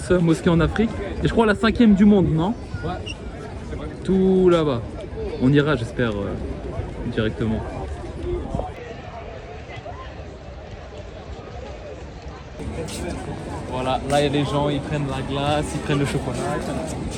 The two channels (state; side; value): identical; both; correlation 1.00